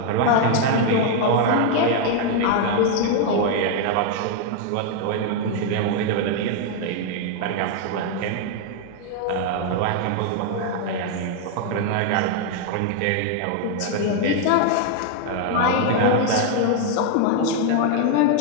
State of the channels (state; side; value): different; both; correlation 0.00